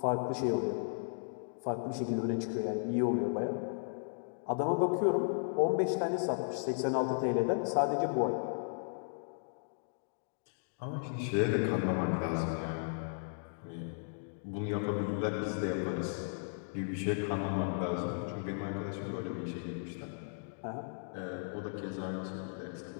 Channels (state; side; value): silent; right; digital silence